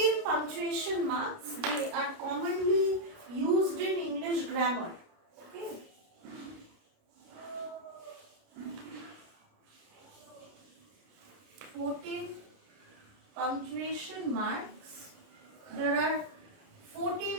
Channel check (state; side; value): late; left; 29 ms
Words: punctuation marks, they are commonly used in English grammar. Okay, 14 punctuation marks. There are